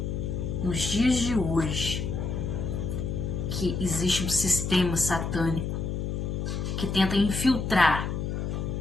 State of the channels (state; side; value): noise; left; hum, 2 dB below the sound